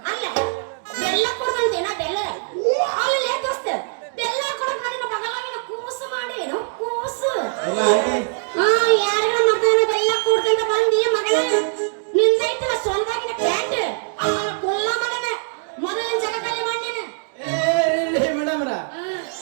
ಅಲ್ಲ ಬೆಲ್ಲ ಕೊಡ್ದಂತೇನ ಬೆಲ್ಲ ಅಲ್ಲಿ ದೋಸ್ತ ಬೆಲ್ಲ ಕೊಡಕ್ ನನ್ನ ಬಗಲಾಗಿನ ಕೂಸು ಮಾಡಿ ಏನೋ ಕೂಸು ಯಾರಿಗ ಮಗನ ಬೆಲ್ಲ ಕೊಡ್ದಂತ ಬಂದಿ ಮಗನ ನಿಂದೈತಲ್ಲ ಸೊಂದಾಗಿನ ಪ್ಯಾಂಟ್ ಕೊಲ್ಲ ಮಗನ ಮೊದಲಿನ ಜಗದಲ್ಲಿ ಮಾಡಿನ. ಮೇಡಮ್ರ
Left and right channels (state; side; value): silent; left; digital silence